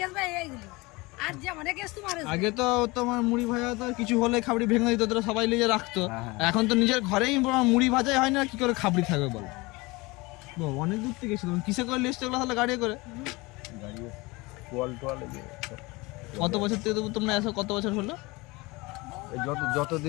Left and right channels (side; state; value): right; quieter; 23.7 dB